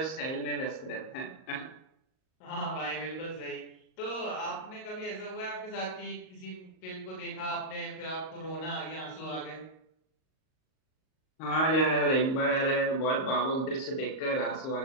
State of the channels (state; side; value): late; right; 38 ms